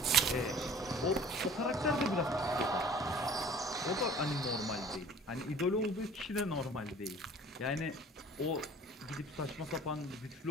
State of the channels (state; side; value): normal; both; correlation 0.48